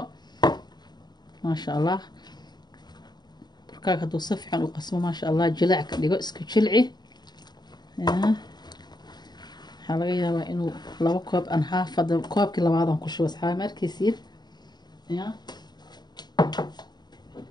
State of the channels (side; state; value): right; late; 0.20 ms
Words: ما شاء الله. بركاك هدو صفحا وقسمه ما شاء الله جلع كديغو اسكو جلعي يا. waxaa laga yaabaa inuu laba koob aan half hada koobkii labaadan ku shubo asxaabe markiisiin ya.